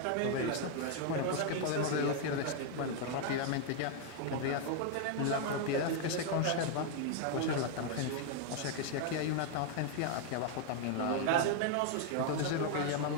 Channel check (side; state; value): both; different; correlation 0.00